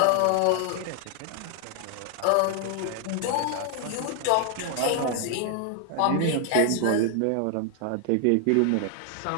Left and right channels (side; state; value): both; different; correlation 0.00